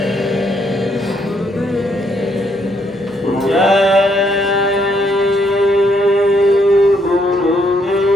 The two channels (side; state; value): both; normal; correlation 0.73